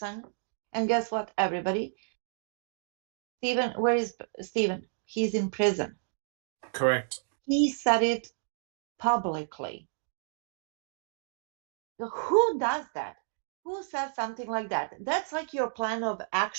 And guess what, everybody? Stephen, where is Stephen? He's in prison. Correct. He said it publicly. Who does that? Who says something like that? That's like your plan of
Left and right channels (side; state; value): left; silent; digital silence